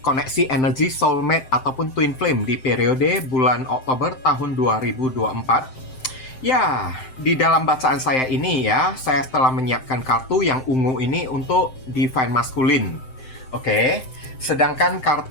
koneksi energi soulmate ataupun twin flame di periode bulan Oktober tahun 2024. Ya, di dalam bacaan saya ini ya, saya telah menyiapkan kartu yang ungu ini untuk divine masculine. Oke, sedangkan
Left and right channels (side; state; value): right; late; 7.7 ms